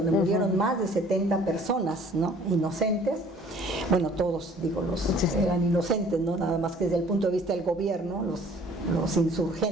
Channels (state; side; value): normal; both; correlation 0.54